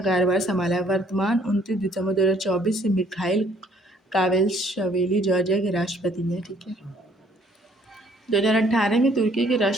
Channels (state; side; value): normal; both; correlation 0.62